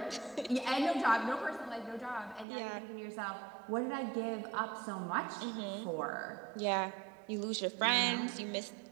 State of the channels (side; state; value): left; drops out; at 2.5 s